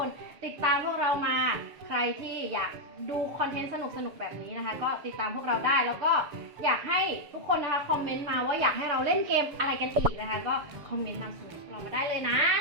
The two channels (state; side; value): late; left; 7.1 ms